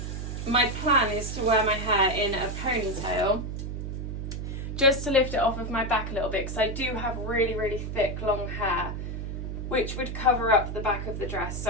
my plan is to wear my hair in a ponytail just to lift it off of my back a little bit, because I do have really, really thick long hair which would cover up the back of the dress.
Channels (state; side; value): noise; right; hum, 5 dB below the sound